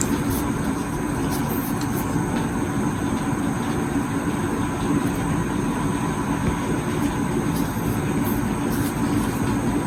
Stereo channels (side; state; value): both; identical; correlation 1.00